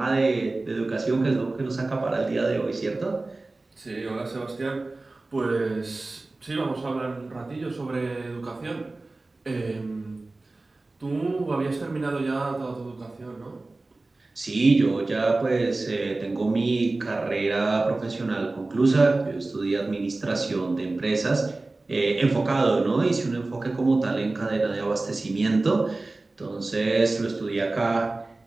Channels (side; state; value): left; quieter; 3.2 dB